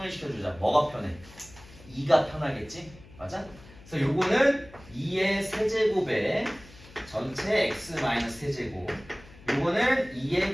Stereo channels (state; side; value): noise; left; hum, 21 dB below the sound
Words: 주자. 뭐가 편해? 2가 편하겠지? 맞아? 그래서 요거는 2의 세제곱에 전체 x-세제곱 요거는 2의